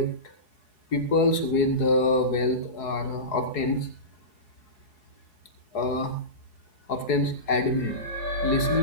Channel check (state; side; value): late; right; 4.7 ms